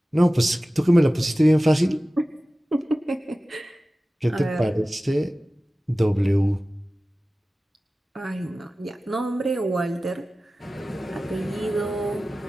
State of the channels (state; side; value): normal; both; correlation 0.96